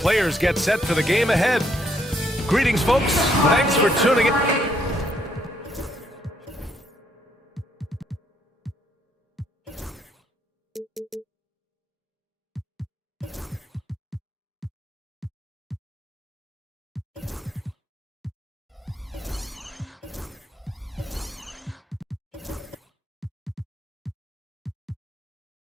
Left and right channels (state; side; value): normal; both; correlation 0.71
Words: get set for the game ahead. Greetings, folks. Thanks for tuning in.